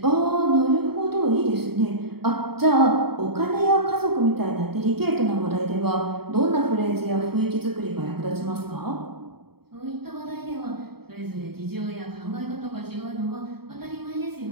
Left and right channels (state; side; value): late; left; 0.96 ms